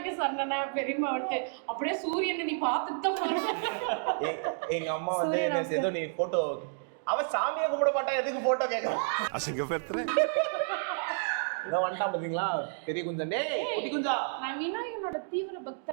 சொன்னா பெரியமா வந்து அப்படியே சூரியனை நீ பார்த்துட்டு தான் போற. எங்க அம்மா வந்து ஏதோ நீ போட்டோ அவ சாமியை கும்பிட மாட்டா எதுக்கு போட்டோ கேக்குறான்? அசிங்கப்படுத்துறேன். இதான் வந்துட்டான் பாத்தீங்களா பெரிய குஞ்சன். டேய் குட்டி குஞ்சா. நான் விநாயகனோட தீவிர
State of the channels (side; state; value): left; silent; digital silence